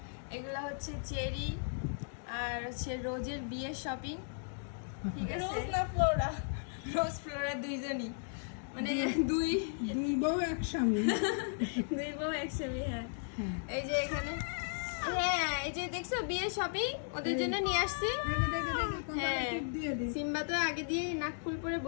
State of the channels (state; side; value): silent; right; digital silence